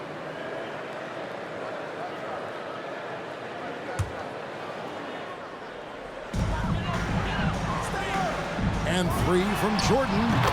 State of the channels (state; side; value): identical; both; correlation 1.00